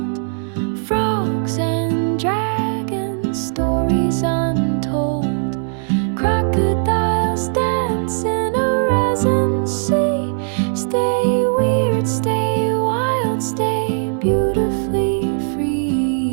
Frogs and dragons, stories untold. Crocodiles dance in a resin sea. Stay weird, stay wild, stay beautifully free.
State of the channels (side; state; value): left; silent; digital silence